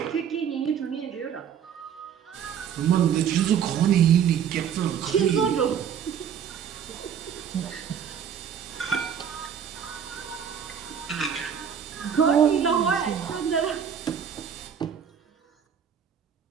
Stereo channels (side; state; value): left; quieter; 8.1 dB